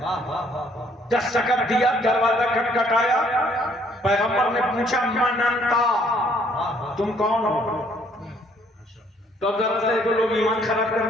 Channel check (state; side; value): normal; both; correlation 0.64